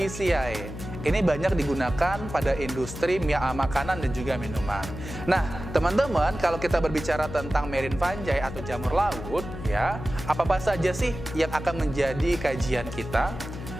Ini banyak digunakan pada industri makanan dan juga minuman. Nah, teman-teman, kalau kita berbicara tentang marine fungi atau jamur laut, ya, apa saja sih yang akan menjadi kajian kita?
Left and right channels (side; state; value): left; noise; hum, 10 dB below the sound